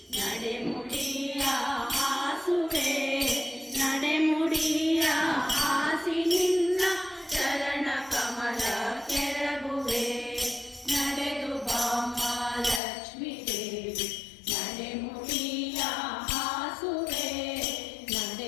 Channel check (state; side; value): drops out; right; at 12.8 s